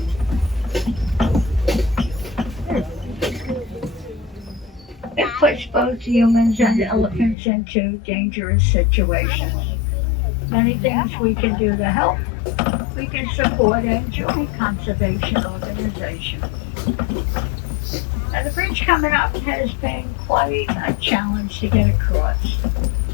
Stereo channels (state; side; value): drops out; right; at 7.4 s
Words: it puts both humans and elephants into dangerous situations. Many things we can do to help. We can support and join conservation organizations. Now, the bridge coming up has been quite a challenge to get across.